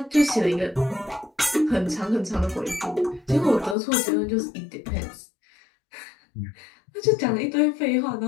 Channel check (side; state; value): right; drops out; at 3.8 s